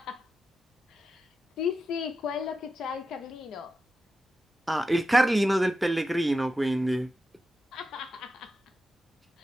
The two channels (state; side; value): normal; both; correlation 0.90